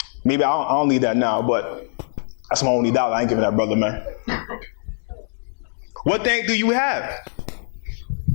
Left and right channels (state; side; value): silent; right; 64 dB below the other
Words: Maybe I don't need that now, but that's my only dollar. I ain't giving that brother, man. What thank do you have?